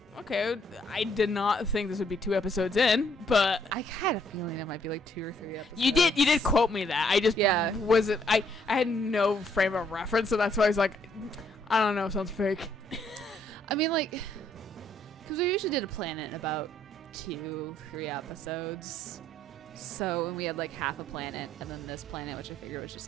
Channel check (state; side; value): normal; both; correlation 0.68